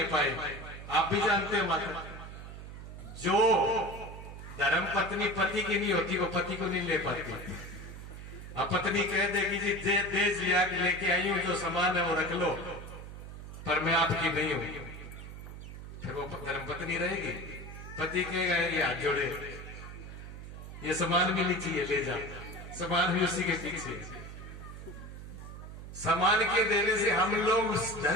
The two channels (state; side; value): noise; right; hum, 11 dB below the sound